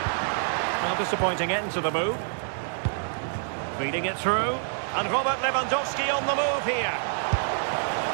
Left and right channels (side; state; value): left; silent; digital silence